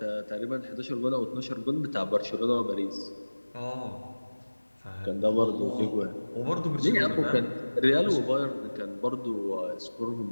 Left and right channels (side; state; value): both; inverted; correlation -1.00